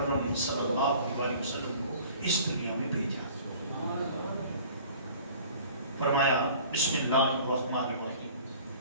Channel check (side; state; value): both; inverted; correlation -0.47